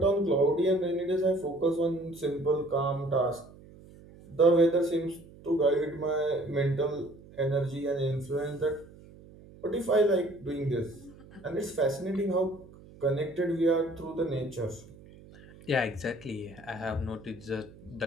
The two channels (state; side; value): noise; right; hum, 21 dB below the sound